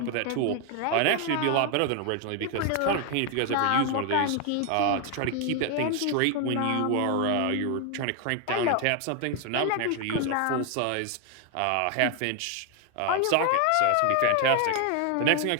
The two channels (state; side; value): different; both; correlation 0.01